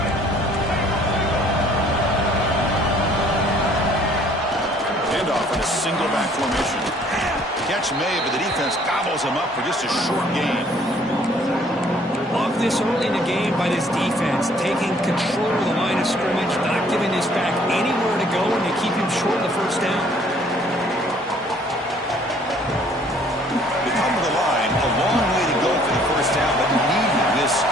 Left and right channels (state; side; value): normal; both; correlation 0.59